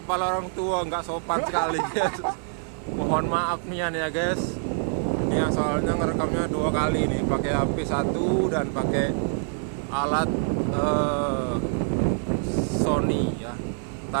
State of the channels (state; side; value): silent; left; 61 dB below the other